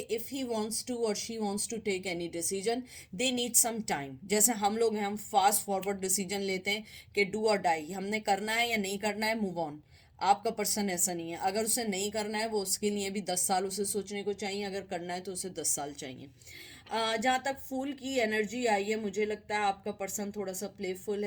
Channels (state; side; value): identical; both; correlation 1.00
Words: इफ़ ही वांट्स टू और she wants to take any decision they need some time. जैसे हम लोग हैं, हम फास्ट फॉरवर्ड डिसीजन लेते हैं कि डू और डाई, हमने करना है या नहीं करना है, मूव ऑन। आपका पर्सन ऐसा नहीं है, अगर उसे नहीं करना है वो उसके लिए भी 10 साल उसे सोचने को चाहिए, अगर करना है तो उसे 10 साल चाहिए। जहाँ तक फूल की एनर्जी आई है, मुझे लगता है आपका पर्सन थोड़ा सा प्लेफुल